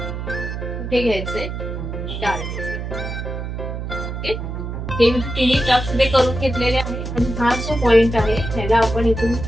कुठे घ्यायचंय. ओके. हे मी 3 टक्स इथे करून घेतलेले आहे. आणि हा जो पॉइंट आहे त्याला आपण इथून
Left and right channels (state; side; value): noise; right; hum, 5 dB below the sound